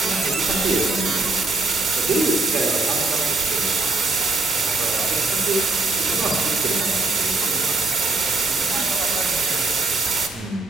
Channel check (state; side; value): quieter; left; 3.4 dB